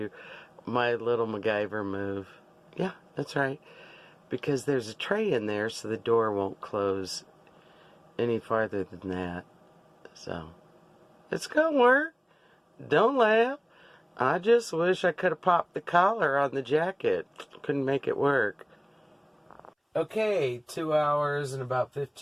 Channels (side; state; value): both; identical; correlation 1.00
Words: my little MacGyver move. Yeah, that's right. Because there's a tray in there, so the door won't close any farther than that. So, it's gonna work. Don't laugh. I just wish I could have popped the collar on the jacket. Couldn't make it work. Okay, 2 hours and about